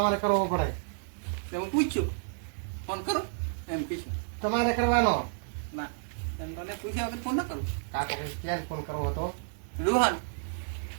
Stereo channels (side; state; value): left; silent; digital silence